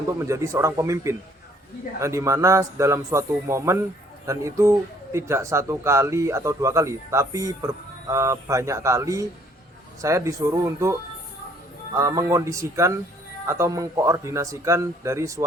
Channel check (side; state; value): both; normal; correlation 0.62